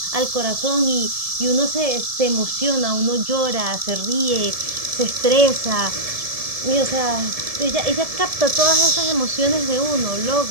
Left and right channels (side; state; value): left; late; 1.7 ms